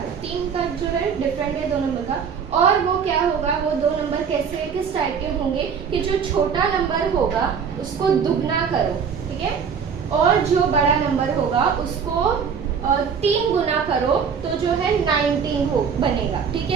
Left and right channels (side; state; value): left; quieter; 6.6 dB